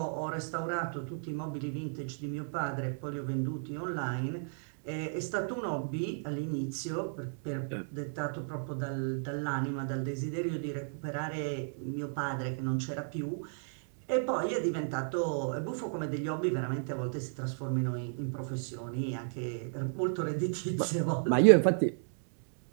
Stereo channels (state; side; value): silent; left; digital silence